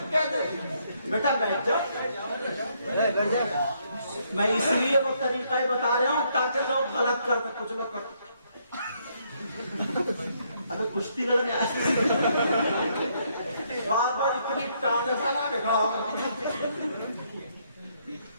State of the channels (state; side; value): inverted; both; correlation -0.72